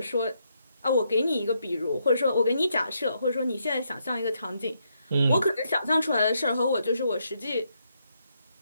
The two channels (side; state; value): both; inverted; correlation -0.78